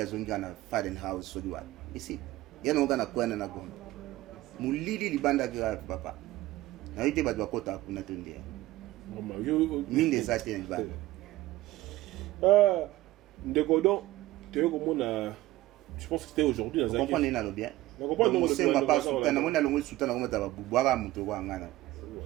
na Faden House so diwa ici yana ngana kwa na gombe mulili libanda grave papa na yete ba kota kuna tendea mine ça tient pas ndeko donc tu veux comment je pense que c'était aujourd'hui dans un comprendre na lo bien na comprendre c'est pas soutana mona longo soutana ngoma ta bubwaka muto kwa ngana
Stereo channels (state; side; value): quieter; left; 17.0 dB